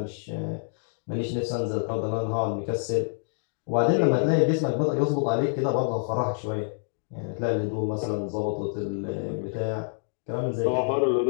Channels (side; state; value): right; silent; digital silence